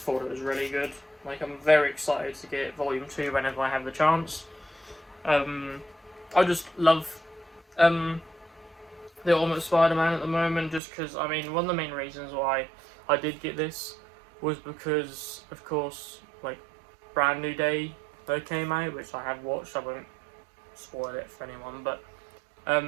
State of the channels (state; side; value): drops out; left; at 10.8 s